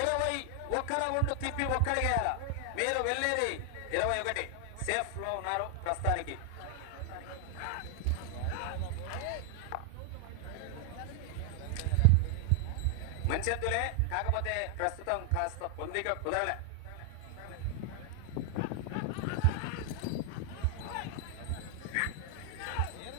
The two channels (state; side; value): different; both; correlation 0.00